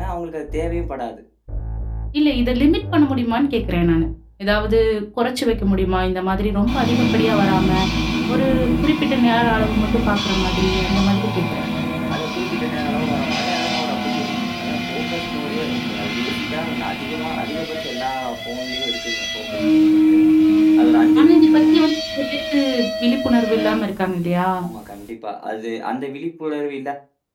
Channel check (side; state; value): both; identical; correlation 1.00